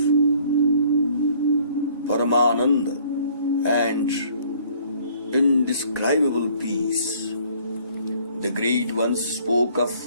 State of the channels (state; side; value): inverted; both; correlation -0.58